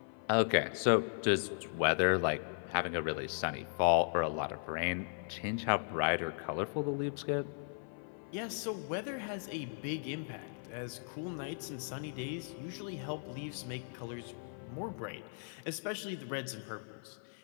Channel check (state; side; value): silent; right; 53 dB below the other